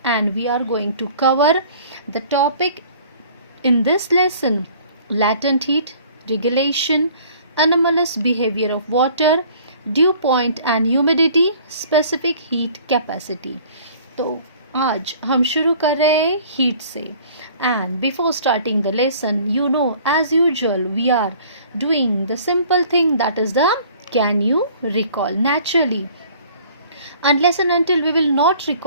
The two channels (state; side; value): inverted; both; correlation -0.52